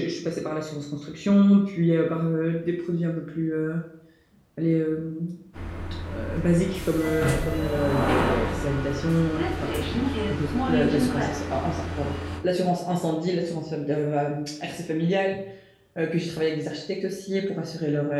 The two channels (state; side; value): identical; both; correlation 1.00